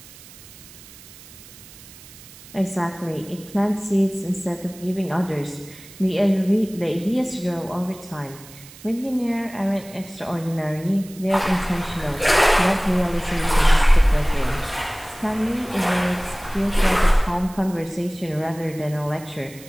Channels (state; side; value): noise; right; hiss, 20 dB below the sound